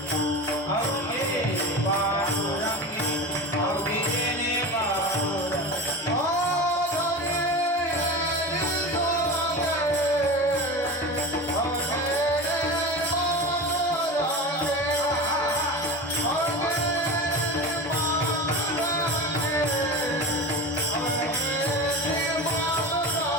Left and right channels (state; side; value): normal; both; correlation 0.28